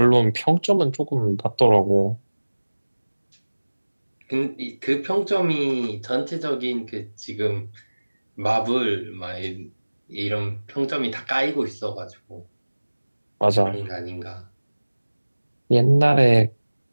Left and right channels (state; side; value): inverted; both; correlation -1.00